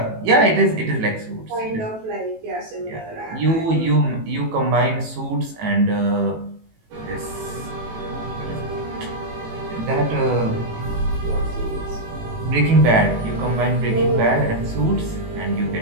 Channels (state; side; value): late; left; 18 ms